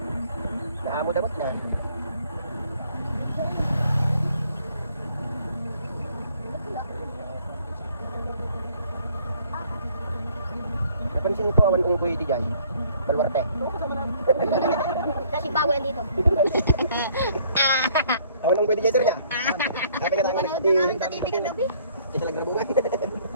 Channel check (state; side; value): inverted; both; correlation -0.61